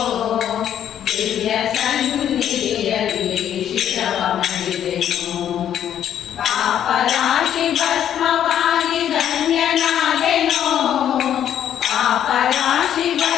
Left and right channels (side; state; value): right; quieter; 10.1 dB